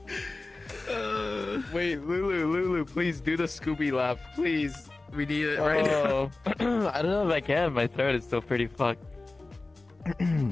Wait, Lulu, please do the Scooby laugh, please. We need it right now. Oh, I don't know if I can. My throat is still pretty fucked.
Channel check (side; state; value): right; quieter; 3.2 dB